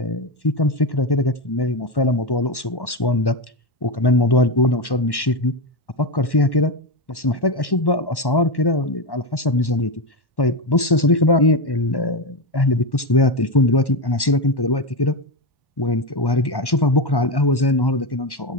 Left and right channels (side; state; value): right; late; 1.1 ms